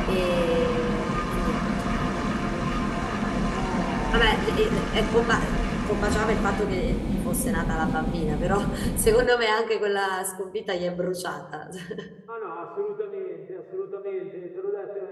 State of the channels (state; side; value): identical; both; correlation 1.00